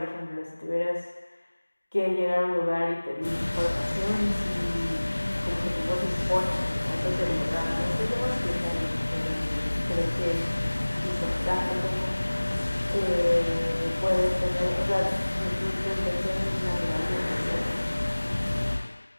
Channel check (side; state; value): both; inverted; correlation -1.00